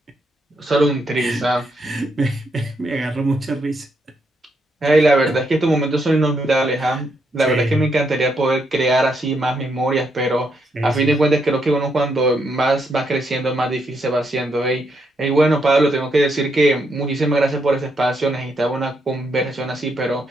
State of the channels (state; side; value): normal; both; correlation 0.78